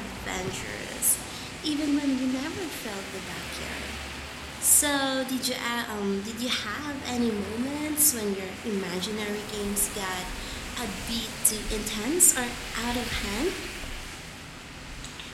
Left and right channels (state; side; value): identical; both; correlation 1.00